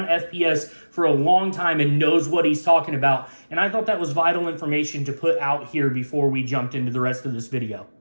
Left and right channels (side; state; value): both; inverted; correlation -1.00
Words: FPS for a long time and knows what he's talking about. And I thought that was vital information to put out here before we jumped into the rest of this video.